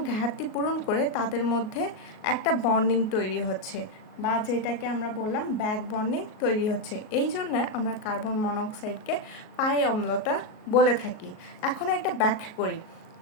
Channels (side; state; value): right; late; 38 ms